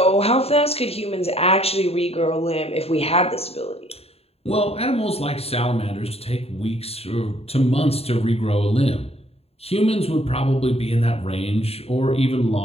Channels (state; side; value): late; right; 0.29 ms